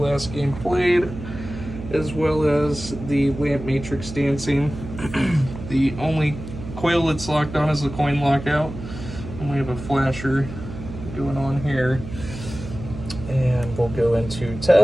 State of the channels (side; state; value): right; noise; hum, 11 dB below the sound